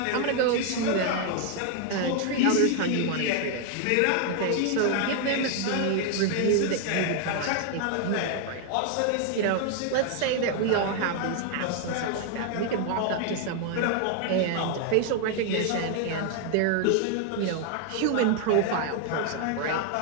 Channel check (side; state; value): both; different; correlation 0.00